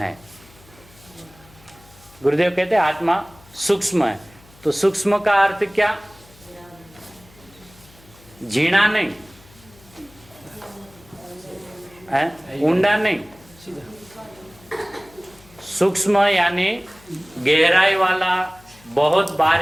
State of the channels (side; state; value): left; noise; hum, 25 dB below the sound